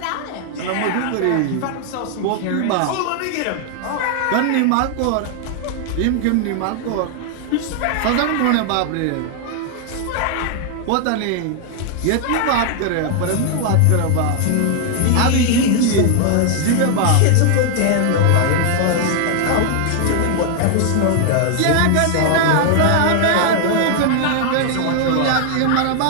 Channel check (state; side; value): different; both; correlation 0.00